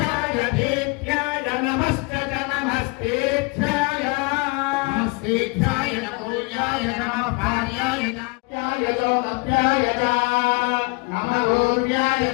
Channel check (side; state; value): right; quieter; 28.2 dB